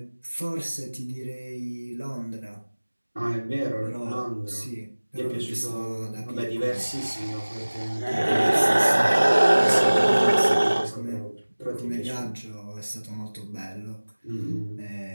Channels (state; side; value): inverted; both; correlation -1.00